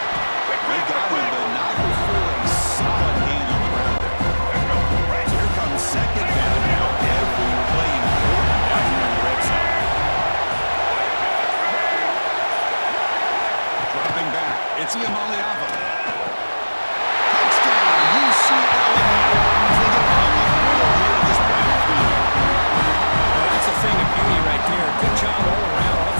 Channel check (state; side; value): inverted; both; correlation -1.00